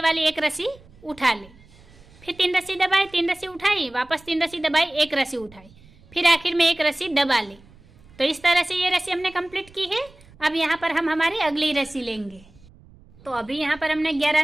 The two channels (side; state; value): right; noise; rumble, 26 dB below the sound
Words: वाली 1 रस्सी उठा ली, फिर 3 रस्सी दबाई, 3 रस्सी उठाई, वापस 3 रस्सी दबाई, 1 रस्सी उठाई, फिर आखिर में 1 रस्सी दबा ली। तो इस तरह से ये रस्सी हमने कंप्लीट की है। अब यहाँ पर हम हमारी अगली रस्सी लेंगे। तो अभी यहाँ पर हमने 11